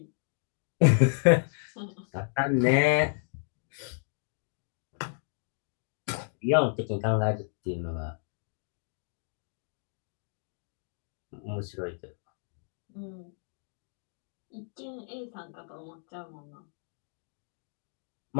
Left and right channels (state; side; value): silent; right; digital silence